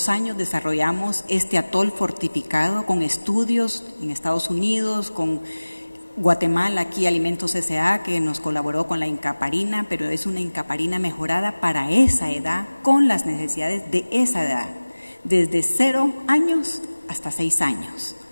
años desarrollamos este atol fortificado con estudios en Estados Unidos, con Guatemala, aquí Alimentos S.A., que nos colaboró con la Incaparina, pero es una Incaparina mejorada para esa edad, con las necesidades de esa edad, desde 0 años hasta 6 años,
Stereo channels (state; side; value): inverted; both; correlation -1.00